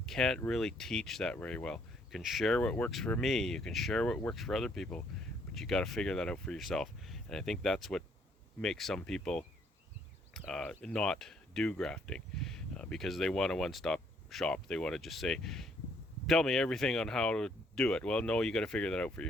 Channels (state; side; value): normal; both; correlation 0.68